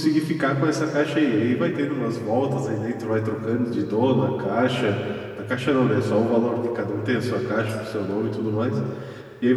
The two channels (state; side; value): identical; both; correlation 1.00